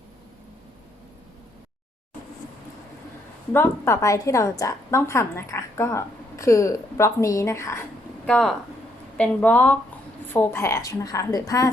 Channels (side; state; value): both; normal; correlation 0.73